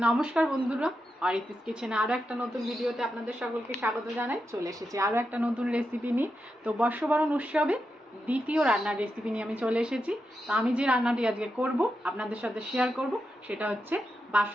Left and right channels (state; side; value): normal; both; correlation 0.87